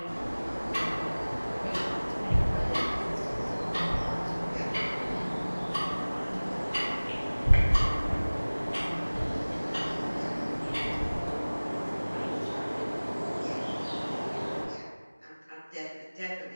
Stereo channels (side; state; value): both; inverted; correlation -1.00